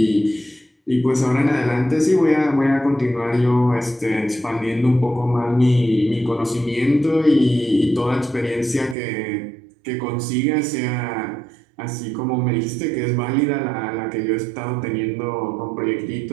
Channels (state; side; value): drops out; left; at 9.0 s